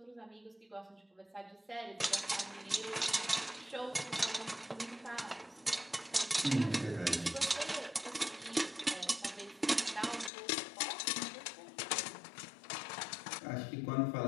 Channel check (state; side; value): drops out; right; at 10.3 s